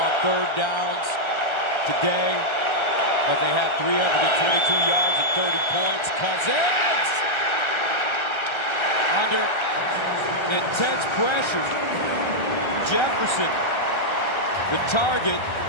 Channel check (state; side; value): late; right; 1.3 ms